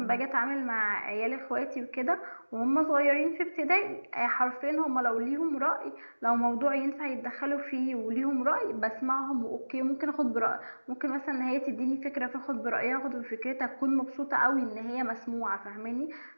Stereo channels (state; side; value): inverted; both; correlation -1.00